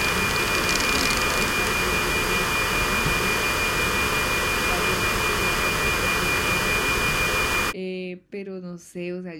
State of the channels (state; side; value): identical; both; correlation 1.00